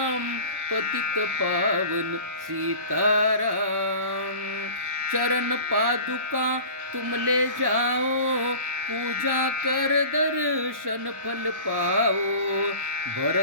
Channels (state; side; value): late; left; 1.1 ms